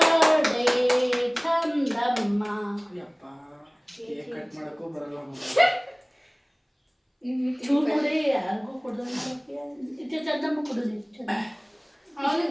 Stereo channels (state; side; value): identical; both; correlation 1.00